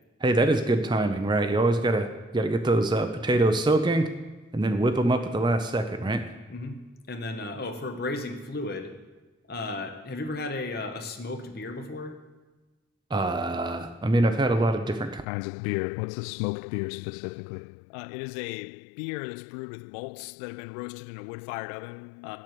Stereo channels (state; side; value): drops out; right; at 15.2 s